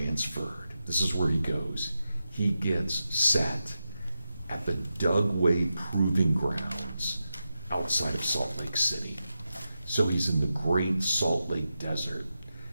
This is where he goes. He gets set at the Dugway Proving Grounds outside of Salt Lake City. So he's in the Great Salt Lake Desert.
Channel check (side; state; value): both; inverted; correlation -0.89